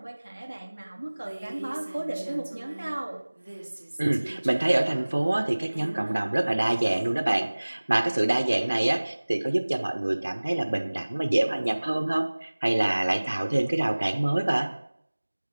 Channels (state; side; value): inverted; both; correlation -1.00